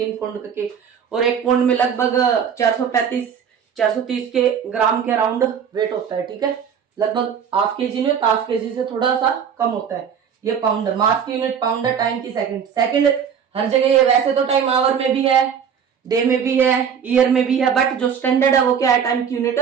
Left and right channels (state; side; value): quieter; left; 7.5 dB